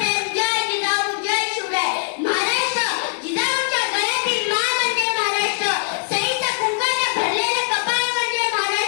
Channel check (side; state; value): right; silent; digital silence